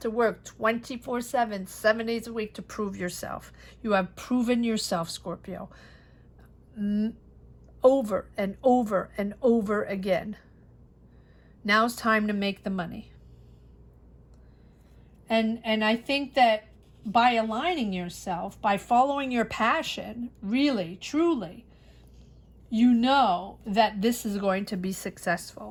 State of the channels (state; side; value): identical; both; correlation 1.00